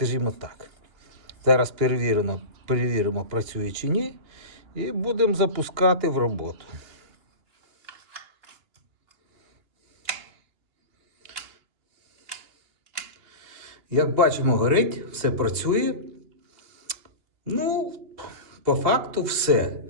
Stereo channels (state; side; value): late; left; 2.9 ms